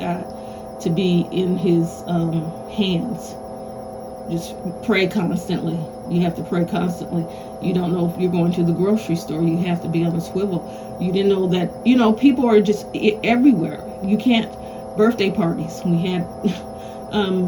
to be in His hands. Just pray constantly. You have to pray constantly. You don't know if you're going to the grocery store, you have to be on a swivel. You didn't know that, people are just everywhere. You can't, birthday parties, we had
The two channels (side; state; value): both; identical; correlation 1.00